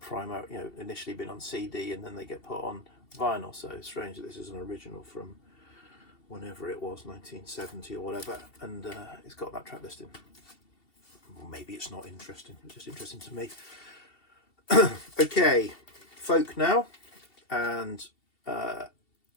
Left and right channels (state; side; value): late; right; 2.7 ms